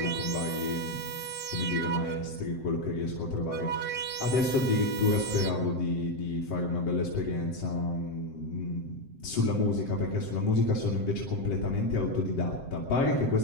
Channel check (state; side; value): late; right; 7.7 ms